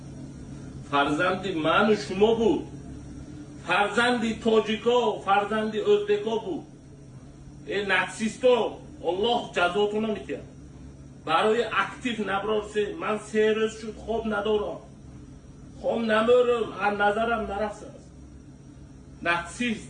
فرزند من و شما بود، فرزند تاجیکا، فرزند ازبکا بود. این نکسیستا الله جزاتون رو میتید. برای اکتیو نبرارسه من 3 روز شد خواب ندارم، خواب نمیرم، از نظرم نرفته است. نکسیست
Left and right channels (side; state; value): both; identical; correlation 1.00